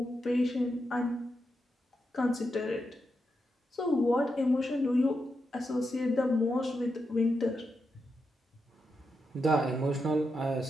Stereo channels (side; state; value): both; normal; correlation 0.86